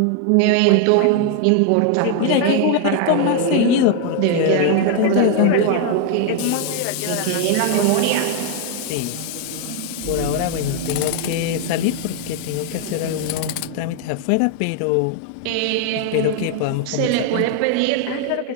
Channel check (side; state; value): both; different; correlation 0.01